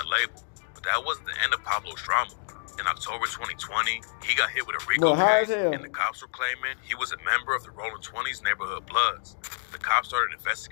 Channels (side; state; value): right; silent; digital silence